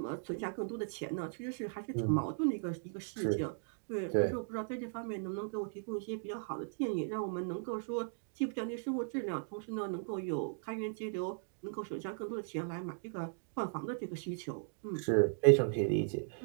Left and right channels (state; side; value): silent; left; digital silence